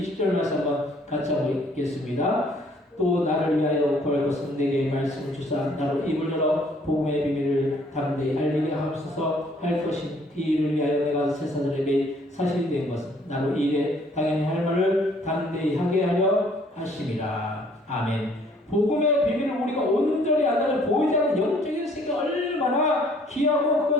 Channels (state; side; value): normal; both; correlation 0.61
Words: 말씀 한번 같이 한번 읽겠습니다. 또 나를 위하여 구할 것은 내게 말씀을 주사 나로 입을 열어 복음의 비밀을 담대히 알리게 하옵소서 할 것인 이 일을 위하여 내가 세사들에게 사실이 된 것은 나로 이 일에 당연히 할 말을 담대히 하게 하려 하심이라. 아멘. 복음의 비밀을 우리가 온전히 안다면 보이지 않는 영적인 세계가 얼마나 귀하고